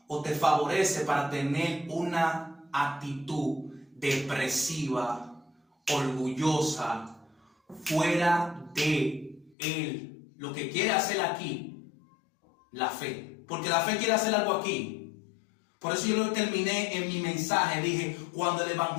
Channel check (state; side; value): drops out; right; at 9.6 s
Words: o te favorece para tener una actitud depresiva, orgullosa, fuera de Él. Lo que quiere hacer aquí, la fe. Porque la fe quiere hacer algo aquí. Por eso yo lo terminé en mi mensaje. Dije, cuando